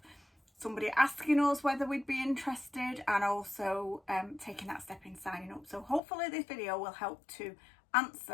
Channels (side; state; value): right; drops out; at 6.0 s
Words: somebody asking us whether we'd be interested and also taking that step in signing up. So hopefully this video will help to